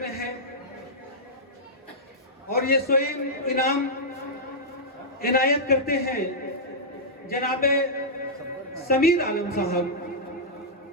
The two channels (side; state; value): both; normal; correlation -0.11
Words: है, और ये स्वयं इनाम इनायत करते हैं जनाबे समीर आलम साहब।